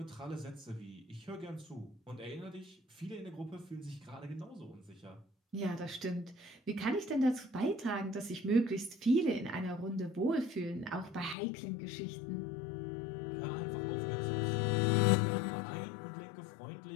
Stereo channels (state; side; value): drops out; right; at 11.4 s